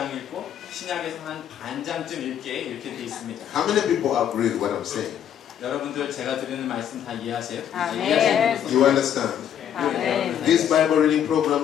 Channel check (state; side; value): quieter; right; 9.5 dB